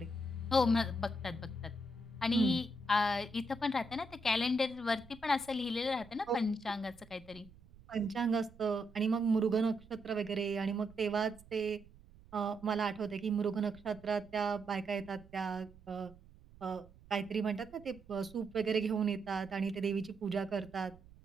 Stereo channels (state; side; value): noise; right; rumble, 23 dB below the sound